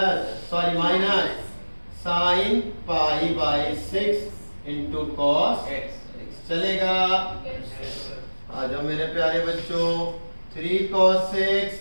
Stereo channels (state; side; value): inverted; both; correlation -1.00